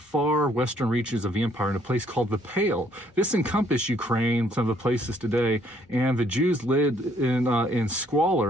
western reaches of the empire in a place called the Pale. This encompassed Ukraine, some of the places today, and the Jews lived in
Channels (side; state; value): both; normal; correlation 0.65